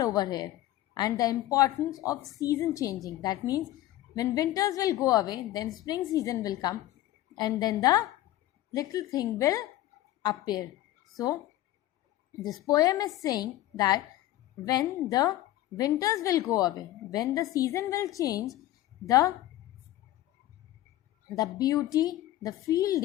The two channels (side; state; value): right; quieter; 14.8 dB